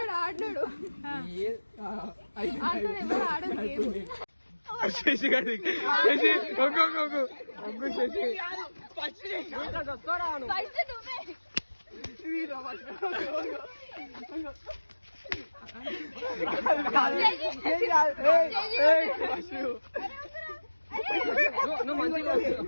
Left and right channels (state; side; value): inverted; both; correlation -1.00